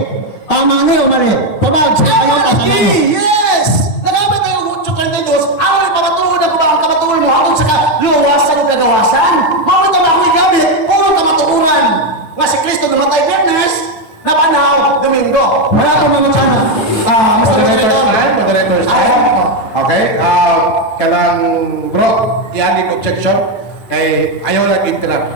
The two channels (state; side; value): late; right; 9.1 ms